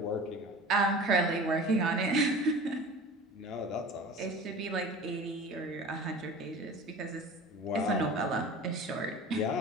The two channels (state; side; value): normal; both; correlation 0.38